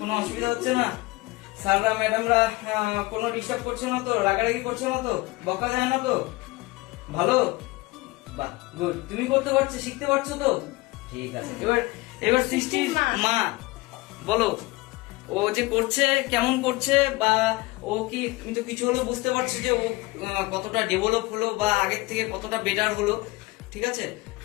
অসুবিধা হচ্ছে না? স্যাররা ম্যাডামরা কোনো ডিস্টার্ব করছে না তো? রাগারাগি করছে না তো? বকা যায় না তো? ভালো, বাহ, গুড। তুমি করতে পারছো, শিখতে পারছো তো? ঠিক আছে। এবার সৃষ্টির মা বলো, ও যে করছে কেমন করছে, বা ও কি, তুমি তো কিছু হলো বুঝতে পারছো যে ও কতটা ডেভেলপ হলো বা আগের থেকে কতটা বেটার হলো, ঠিক আছে?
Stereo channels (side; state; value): right; quieter; 22.1 dB